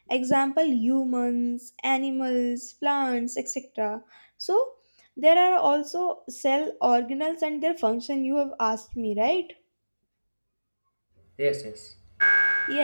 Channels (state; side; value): inverted; both; correlation -1.00